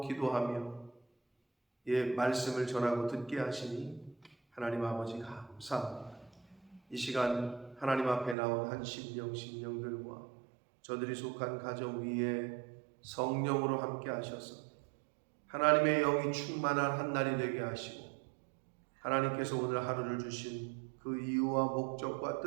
기도하며 말씀을 전하고 듣게 하시니 하나님 아버지 감사합니다. 이 시간 하나님 앞에 나온 한 심령들과 저들이 속한 가정 위에 성령으로 함께 하셔서 하나님의 영이 충만한 한 날이 되게 하시고, 하나님께서 오늘 하루를 주신 그 이유와 목적과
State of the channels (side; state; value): left; drops out; at 8.3 s